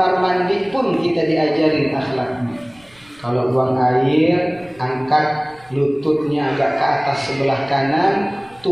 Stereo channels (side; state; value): right; noise; rumble, 28 dB below the sound